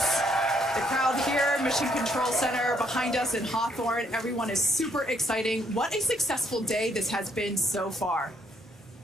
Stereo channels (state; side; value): normal; both; correlation 0.70